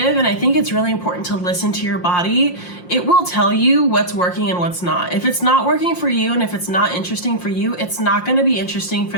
and I think it's really important to listen to your body. It will tell you what's working and what's not. If it's not working for you and if it's not interesting for you, it's not going to be interesting for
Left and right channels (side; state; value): right; late; 5.6 ms